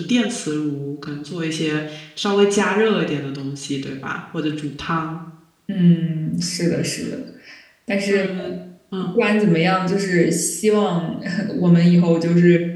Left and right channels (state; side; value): identical; both; correlation 1.00